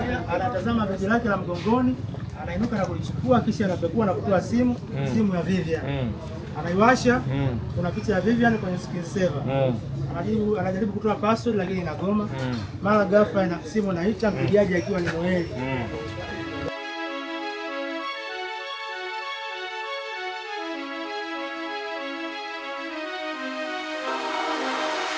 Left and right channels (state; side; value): identical; both; correlation 1.00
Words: Anatazama begi lake la mgongoni, anainuka na kulichukua, kisha anapekua na kutoa simu ya Vivian. Anaiwasha, kuna picha ya Vivian kwenye screen saver. Anajaribu kutoa password lakini inagoma. Mara ghafla ina simu inaita, mpigaji akiwa ni Noeli.